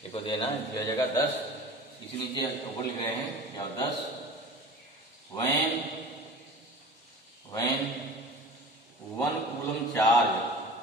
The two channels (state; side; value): normal; both; correlation 0.38